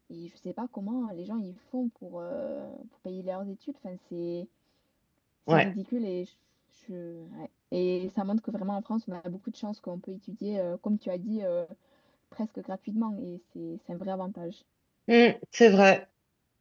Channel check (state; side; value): identical; both; correlation 1.00